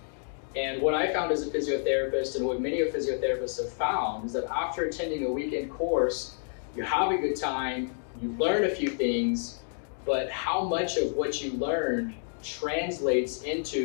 And what I found as a physiotherapist, and what many of physiotherapists have found, is that after attending a weekend course, you have a good time, you learn a few things, but how much of what you learned translates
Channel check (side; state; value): right; silent; 58 dB below the other